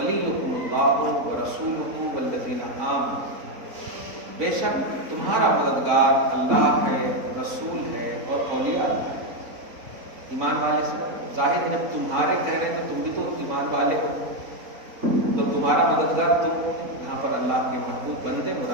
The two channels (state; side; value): late; left; 3.9 ms